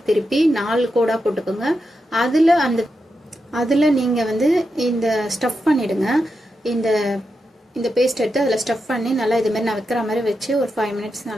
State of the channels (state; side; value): normal; both; correlation 0.87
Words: திருப்பி 4 கோடாக போட்டுக்கோங்க. அதில் நீங்கள் இந்த ஸ்டஃப் பண்ணிவிடுங்க. இந்த பேஸ்ட் எடுத்து அதில் ஸ்டஃப் பண்ணி நல்லா இதுமாரி நான் வைக்கிற மாதிரி வச்சு ஒரு 5 மினிட்ஸ்